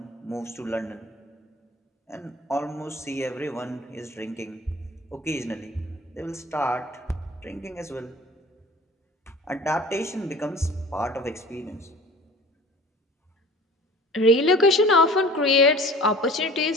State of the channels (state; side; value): normal; both; correlation 0.44